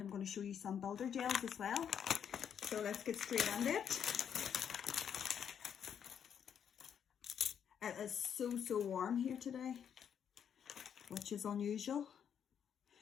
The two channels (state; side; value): quieter; right; 8.2 dB